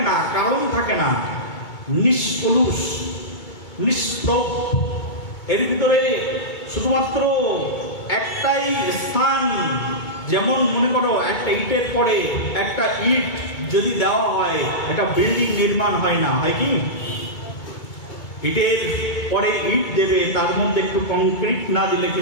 না, কারণ থাকে না, নিষ্কলুষ, নিষ্প্রভ। এর ভিতরে শুধুমাত্র একটাই স্থান। যেমন মনে করো একটা ইটের পরে একটা ইট যদি দেওয়া হয়, একটা বিল্ডিং নির্মাণ হয় না, হয় কি? ইটের পরে ইট দেবে, তার মধ্যে একটু কংক্রিট না দিলে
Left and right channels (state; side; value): late; right; 2.2 ms